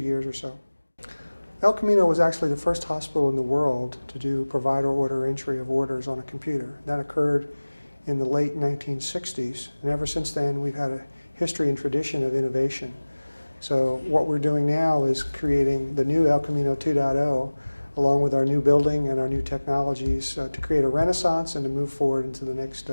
or so. El Camino was actually the first hospital in the world to do provider order entry of orders on a computer. That occurred in the late 1960s, and ever since then we've had a history and tradition of innovation. So what we're doing now is creating the new El Camino 2.0 along with our new building and our new technologies to create a renaissance and to move forward into the next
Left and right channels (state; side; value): inverted; both; correlation -1.00